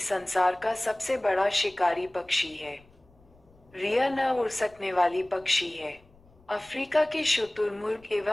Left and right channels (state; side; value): noise; left; rumble, 29 dB below the sound